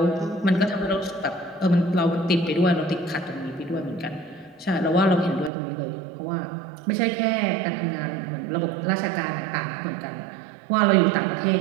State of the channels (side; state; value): left; drops out; at 5.5 s